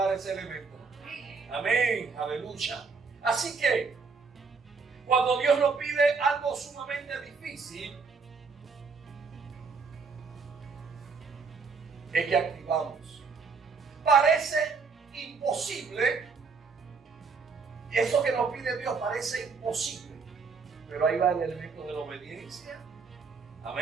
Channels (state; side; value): quieter; left; 4.9 dB